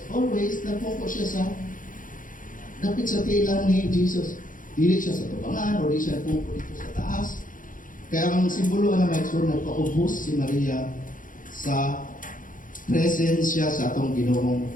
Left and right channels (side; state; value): right; late; 0.39 ms